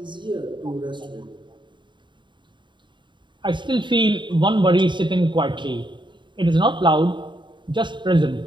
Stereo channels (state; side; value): late; left; 0.23 ms